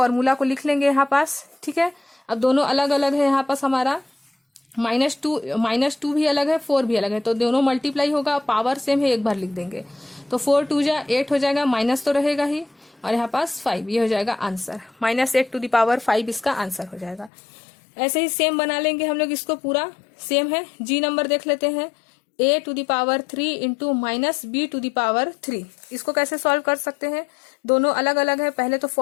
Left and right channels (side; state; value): right; drops out; at 17.3 s